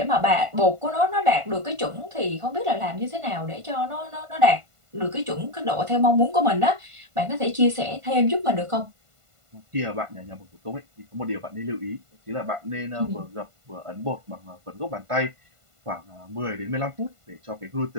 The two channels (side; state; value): left; late; 1.5 ms